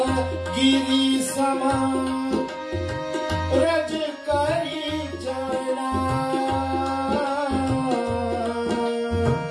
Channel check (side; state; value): both; identical; correlation 1.00